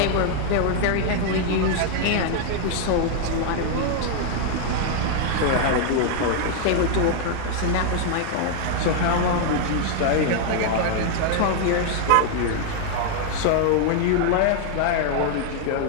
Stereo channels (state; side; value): different; both; correlation 0.00